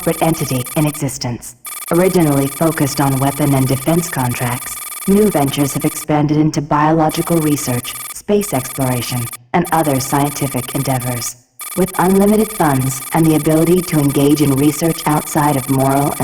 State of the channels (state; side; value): identical; both; correlation 1.00